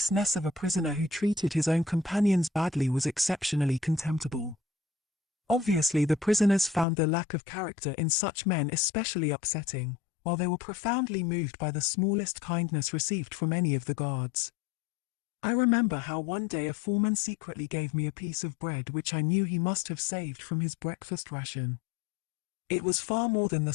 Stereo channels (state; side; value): drops out; right; at 6.9 s